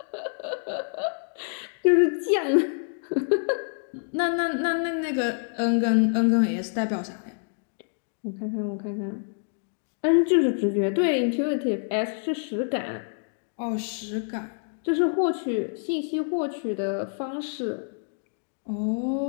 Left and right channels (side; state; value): right; silent; 60 dB below the other